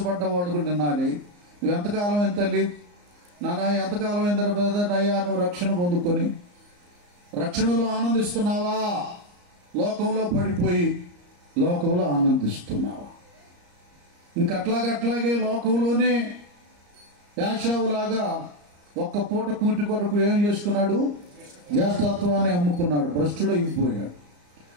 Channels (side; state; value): left; late; 34 ms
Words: వాళ్ళు కూడా వినాలి. నువ్వు ఎంతకాలం ఎంత తల్లి నానా, ఎంతకాలం ఎంత బ్రదర్ అయ్యా నువ్వు రక్షణ పొందుకొని రక్షణలో ఆనందిస్తున్నావా? లోకంలో పడిపోయి లోకంలో ఆనందిస్తున్నావా? ఇంకట్లాగే లోకంలోనే యాషావులాగా ఒక్క పూట కూటి కొరకు ఏం చేసుకున్నాడు? జ్యేష్ఠత్వాన్ని అమ్ముకున్నాడు, భ్రష్టుడు అయిపోయాడు.